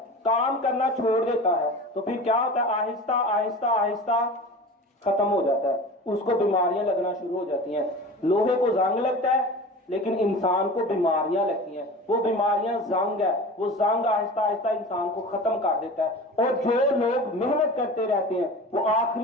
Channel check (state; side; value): normal; both; correlation 0.35